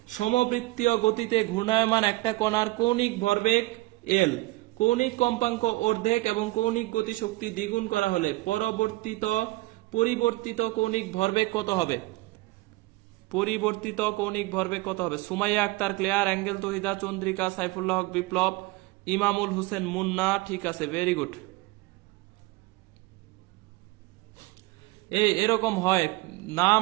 সমবৃত্তীয় গতিতে ঘূর্ণায়মান একটা কণার কৌণিক ভরবেগ এল, কৌণিক কম্পাঙ্ক অর্ধেক এবং কৌণিক গতিশক্তি দ্বিগুণ করা হলে পরিবর্তিত কৌণিক ভরবেগ কত হবে? সুমাইয়া আক্তার ক্লিয়ার, অ্যাঙ্গেল তহিদা, চন্দ্রিকা, সাইফুল্লাহ হক বিপ্লব, ইমামুল হোসেন মুন্না, ঠিক আছে, ভেরি গুড। এরকম হয়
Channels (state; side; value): quieter; left; 21.0 dB